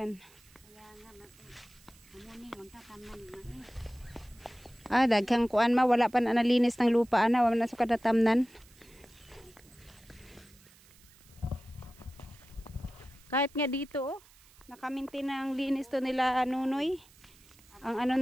Kaya nga amuning unta tamnan man. Daghang kuan wala pa na nalinis ng lupa wala na sa kadatamnan. Kahit nga dito nakamintin ang linis to nila Nunoy.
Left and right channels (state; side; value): noise; right; hiss, 26 dB below the sound